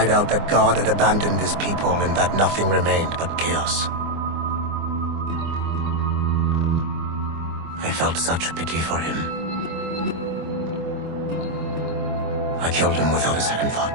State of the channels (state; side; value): late; left; 24 ms